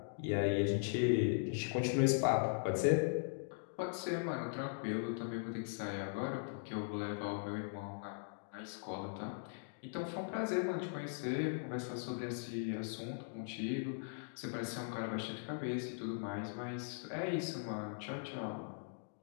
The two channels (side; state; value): right; silent; digital silence